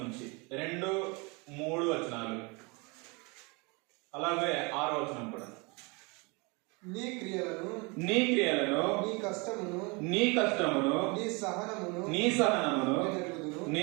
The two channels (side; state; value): left; quieter; 29.1 dB